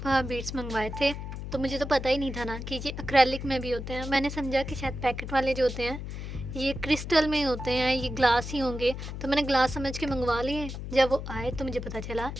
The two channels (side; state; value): left; noise; hum, 7 dB below the sound